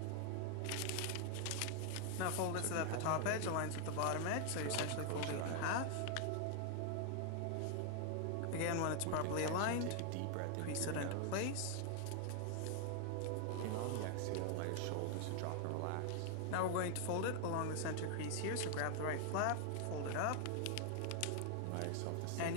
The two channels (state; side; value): different; both; correlation 0.00